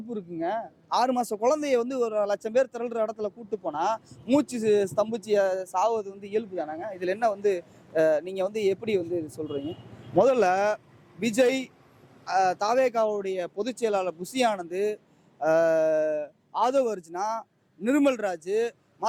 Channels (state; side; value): identical; both; correlation 1.00